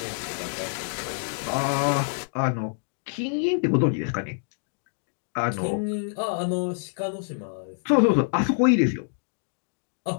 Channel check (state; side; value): silent; right; digital silence